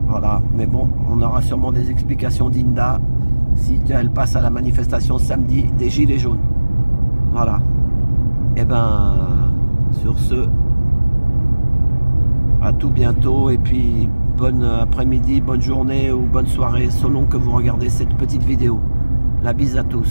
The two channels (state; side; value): inverted; both; correlation -1.00